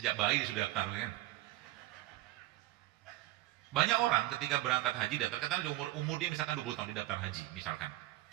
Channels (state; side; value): quieter; left; 16.6 dB